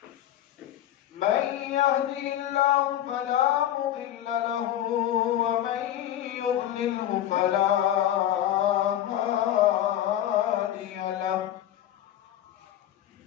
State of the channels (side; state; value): right; quieter; 12.0 dB